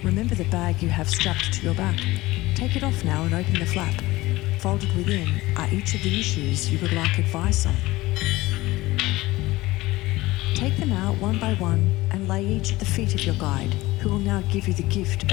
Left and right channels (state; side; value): quieter; right; 19.0 dB